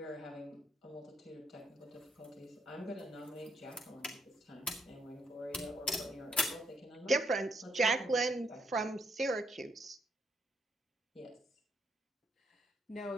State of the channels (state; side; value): normal; both; correlation 0.73